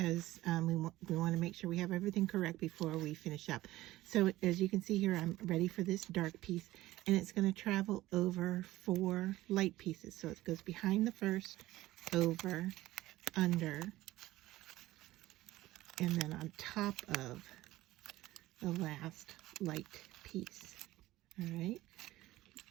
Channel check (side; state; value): left; quieter; 16.7 dB